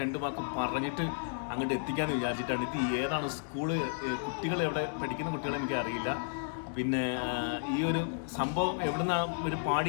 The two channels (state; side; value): silent; right; digital silence